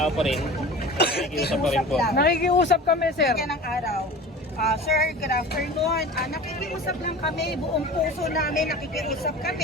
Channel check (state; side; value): normal; both; correlation 0.37